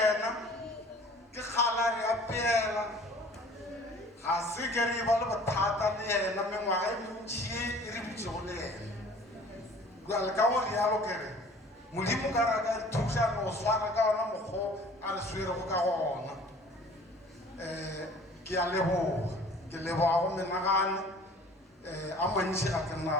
ke kgala re apeela ga se ke re ba le bothata le yena mengwaga e mentšhi e re butšego le yena jale ka go rialo kere modimo ka ra ka thuša no swara ka ona mokgo a re swerego ka gona ke a leboga ke leboga go menagane a mantši ga ke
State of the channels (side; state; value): both; normal; correlation 0.49